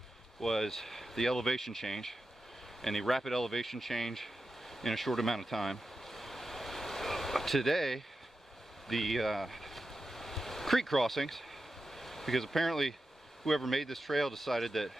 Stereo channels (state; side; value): normal; both; correlation 0.91